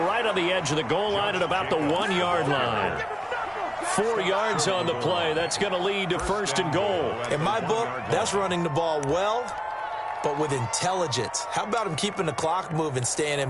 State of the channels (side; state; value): both; identical; correlation 1.00